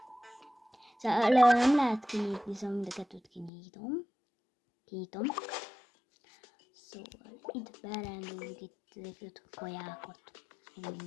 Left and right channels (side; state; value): right; drops out; at 3.5 s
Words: Szóval nem lehet kinyitni, szóval mind a kettőt kinyitom. Szóval itt berendeljük itt a kajákat, meg